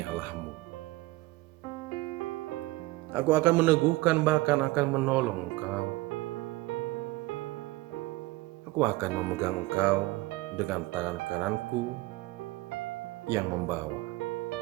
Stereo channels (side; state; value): left; quieter; 20.1 dB